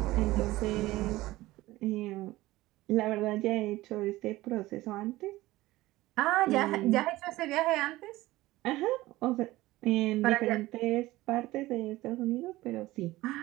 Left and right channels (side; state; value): left; quieter; 18.0 dB